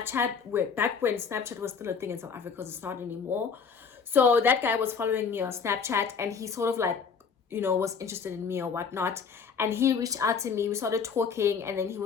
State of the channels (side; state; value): right; quieter; 5.9 dB